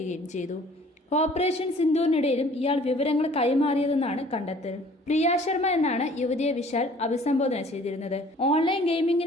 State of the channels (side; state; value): both; normal; correlation 0.53